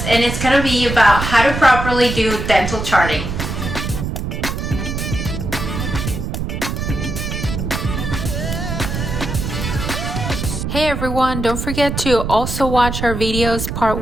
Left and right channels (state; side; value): noise; right; rumble, 4 dB below the sound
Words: and it's going to be about how to properly do dental charting. Hey everyone, don't forget to also watch our videos part